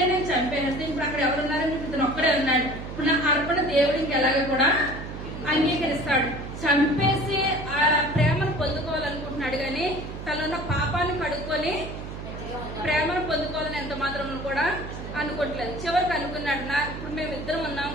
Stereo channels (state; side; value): noise; right; hum, 9 dB below the sound